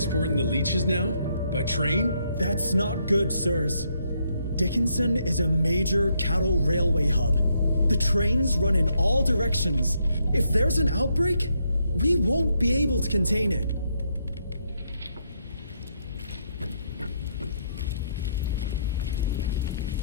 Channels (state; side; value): inverted; both; correlation -0.75